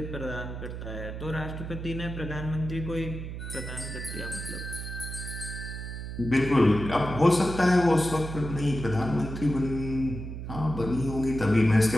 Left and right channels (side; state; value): right; noise; hum, 7 dB below the sound